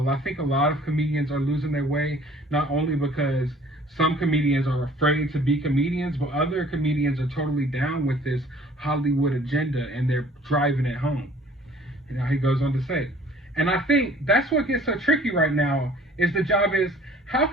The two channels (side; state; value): both; normal; correlation 0.53